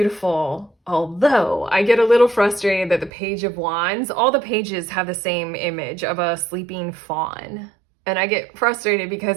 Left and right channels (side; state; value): left; drops out; at 3.1 s